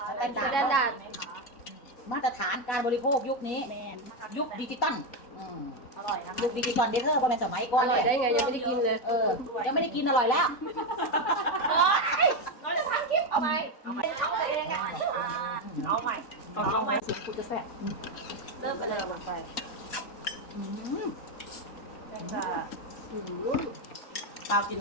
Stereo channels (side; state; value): right; late; 3.9 ms